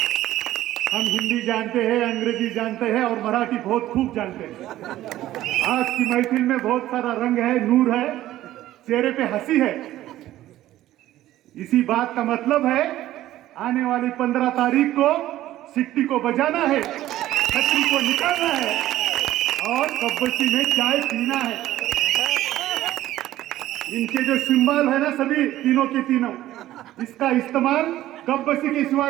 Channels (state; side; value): quieter; left; 14.3 dB